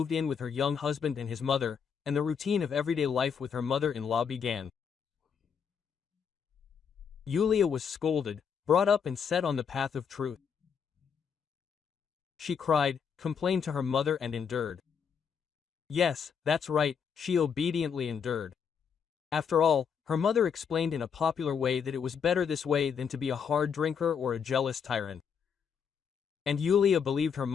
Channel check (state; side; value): quieter; right; 6.9 dB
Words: in with her young husband and his mother, and the routine of everyday life with her mother-in-law began. Yulia was scolded, brought up and set on the path of truth. She cried, complained to her mother and endured. Yes, that's right, she obediently endured. After all, her mother explained in a popular way that it was better this way than to be a hard drinker or a jealous tyrant. And Yulia believed her